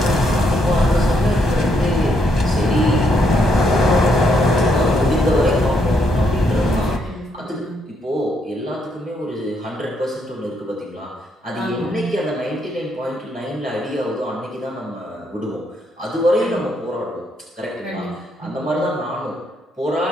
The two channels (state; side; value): normal; both; correlation 0.75